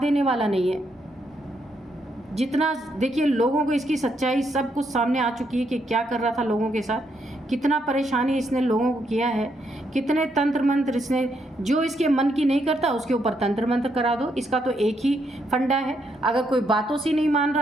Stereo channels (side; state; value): both; normal; correlation 0.77